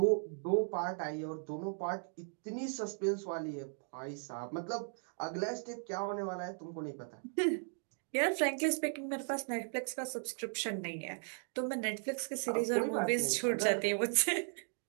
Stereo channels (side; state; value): left; silent; 53 dB below the other